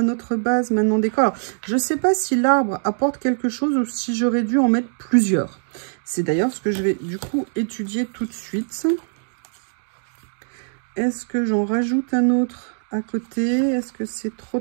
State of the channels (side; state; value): left; silent; digital silence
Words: notre base maintenant décor. Alors, je ne sais pas si l'arbre apporte quelque chose ou si j'aurais dû en mettre plusieurs. C'est d'ailleurs ce que je vais, du coup, étudier tout de suite. Est-ce que j'en rajoute un autre à côté? Est-ce que c'est